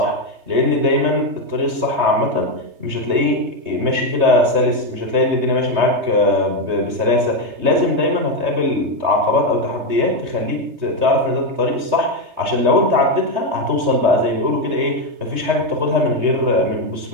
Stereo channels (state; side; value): late; left; 3.2 ms